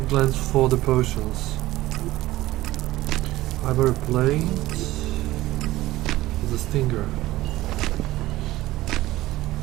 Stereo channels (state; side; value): quieter; left; 16.8 dB